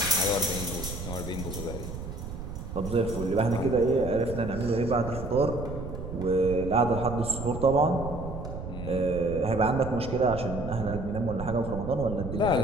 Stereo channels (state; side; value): noise; right; rumble, 8 dB below the sound